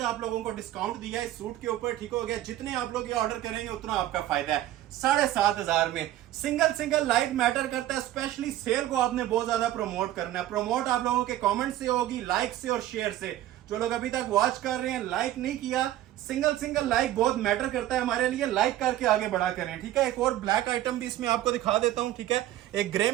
आप लोगों को डिस्काउंट दिया है इस सूट के ऊपर, ठीक हो गया। जितने आप लोग ये ऑर्डर करेंगे उतना आपका फायदा है। 7,500 में सिंगल लाइक मैटर करता है, स्पेशली सेल को आपने बहुत ज्यादा प्रमोट करना है। प्रमोट आप लोगों के कमेंट से होगी, लाइक से और शेयर से। जो लोग अभी तक वॉच कर रहे हैं लाइक नहीं किया, सिंगल लाइक बहुत मैटर करता है हमारे लिए, लाइक करके आगे बढ़ा करें, ठीक है। एक और ब्लैक आइटम भी इसमें आपको दिखा देता हूं, ठीक है। एक ग्रे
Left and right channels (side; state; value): left; quieter; 13.8 dB